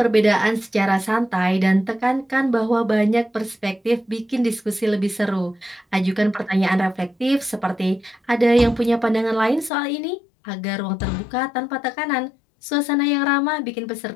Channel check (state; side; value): drops out; right; at 9.7 s